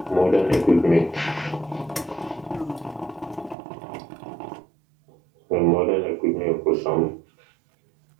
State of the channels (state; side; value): drops out; left; at 3.6 s